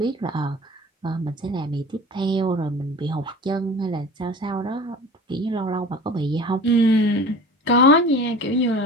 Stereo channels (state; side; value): normal; both; correlation 0.39